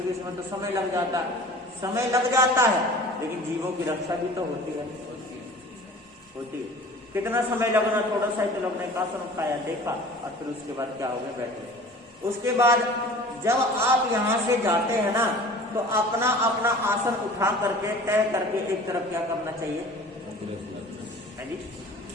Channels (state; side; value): normal; both; correlation 0.43